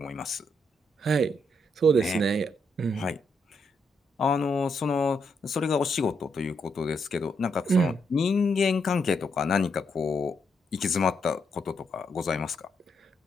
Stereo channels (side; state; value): both; normal; correlation 0.78